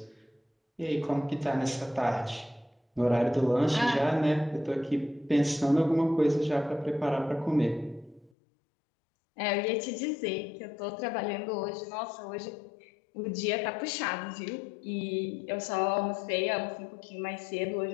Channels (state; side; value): drops out; right; at 8.3 s